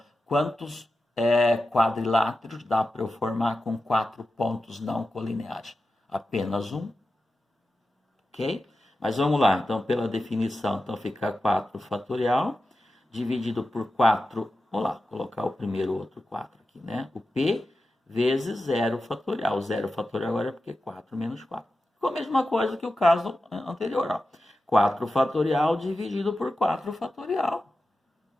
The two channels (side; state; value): both; normal; correlation 0.92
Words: quantos quadriláteros dá para eu formar com 4 pontos não colineares? Apenas um. Ok? Mas vamos lá, então pela definição, então fica 4 fatorial, dividido por 4, vamos lá, colocar o primeiro outro 4 aqui, né? O P vezes 0 fatorial. O 0 fatorial agora é porque 4 menos 4. Ficou a mesma coisa que o caso anterior, ó. 4 fatorial dividido por 4 fatorial.